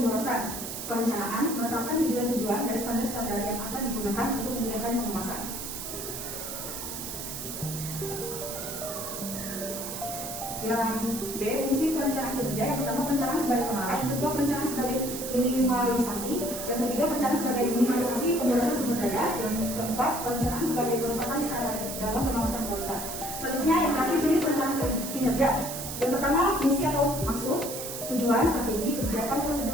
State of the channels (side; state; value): right; noise; hiss, 7 dB below the sound